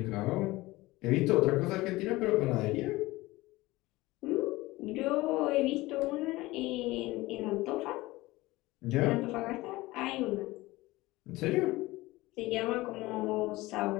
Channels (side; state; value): right; quieter; 19.7 dB